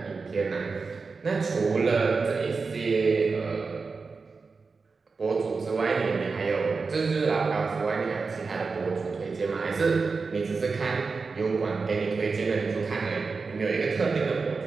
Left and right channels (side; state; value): left; quieter; 4.5 dB